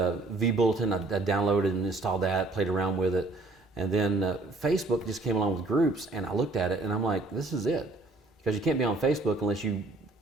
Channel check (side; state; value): left; quieter; 3.1 dB